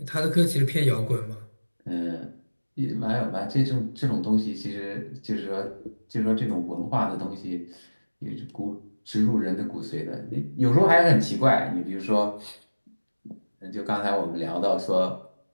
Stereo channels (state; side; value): inverted; both; correlation -1.00